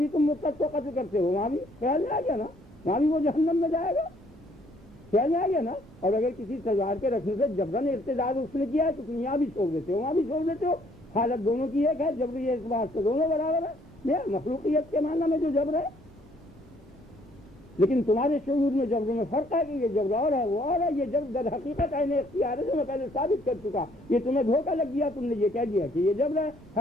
تم مرتد کو قتل کرتے ہو، وہاں بھی خیال میں آ گیا نا، وہاں بھی وہ جہنم میں جائے گا، خیال میں آ گیا نا۔ اور اگر کسی تلوار کے رکھنے سے جبرن ارتداد اس نے کیا ہے تو تم یہاں بھی چھوڑ دیتے ہو وہاں بھی چھوڑ دیتے ہو، حالت دونوں کی ایک ہے، جبری اعتبار سے دونوں برابر ہے۔ یہ مخلوقیت کے معنی میں جو جبر ہے، لیکن تمہارے شعور میں جبر میں فرق ہے کہ یہ جبر اور ہے وہ اور ہے۔ یہ جبر در حقیقت عین اختیار ہے جو میں پہلے ثابت کر چکا۔ یہ تمہیں دھوکہ لگ گیا، تم نے یہ کہہ دیا کہ یہ جبر ہے،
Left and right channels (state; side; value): normal; both; correlation 0.64